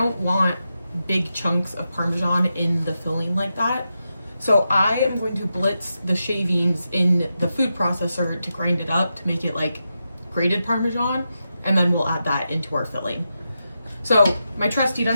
want big chunks of Parmesan in the filling like that. So I am going to blitz the shavings in the food processor to grind it up to make it like grated Parmesan, and then we'll add that into our filling. So my trusty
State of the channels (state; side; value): inverted; both; correlation -0.88